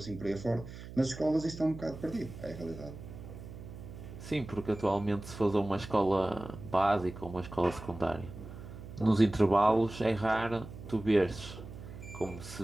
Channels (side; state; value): right; noise; hum, 13 dB below the sound